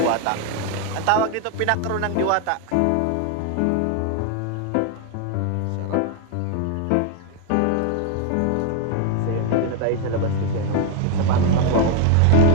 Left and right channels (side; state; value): both; different; correlation 0.01